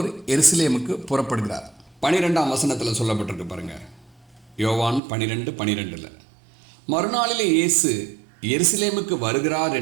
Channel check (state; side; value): drops out; left; at 5.0 s